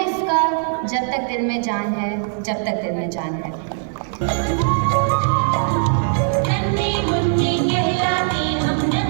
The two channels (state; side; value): silent; left; digital silence